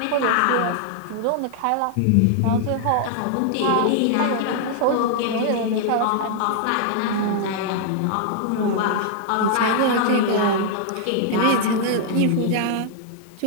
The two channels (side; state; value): both; different; correlation -0.01